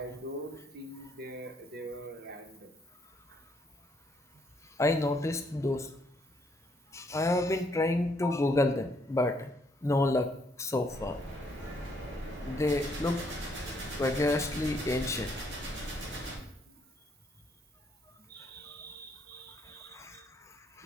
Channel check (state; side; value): normal; both; correlation 0.70